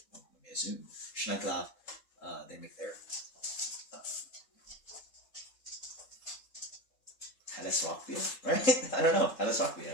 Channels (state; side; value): late; right; 3.7 ms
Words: may assume Schneckler. They make their Helles Rauch beer, right? I don't know. Helles Rauch